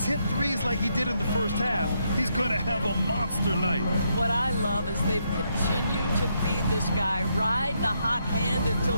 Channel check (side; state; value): both; inverted; correlation -0.77